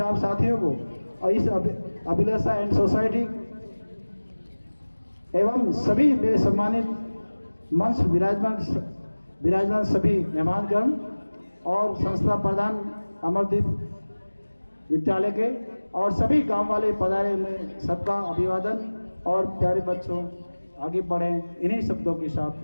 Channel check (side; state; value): both; inverted; correlation -1.00